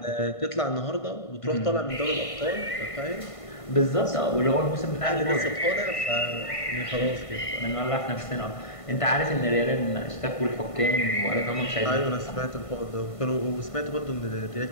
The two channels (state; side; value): late; right; 1.5 ms